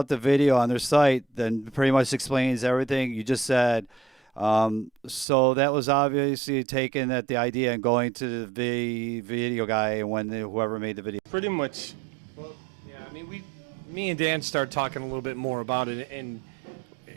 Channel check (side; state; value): left; drops out; at 5.2 s